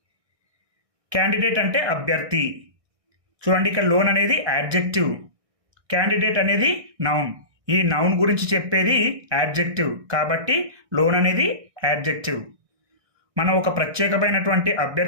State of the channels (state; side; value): late; left; 1.6 ms